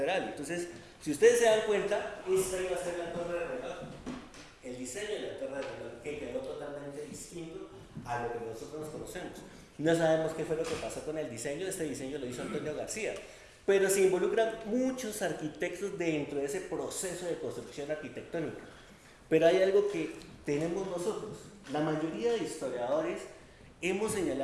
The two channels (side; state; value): both; identical; correlation 1.00